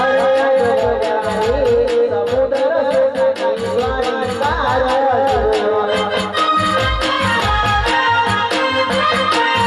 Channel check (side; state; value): both; identical; correlation 1.00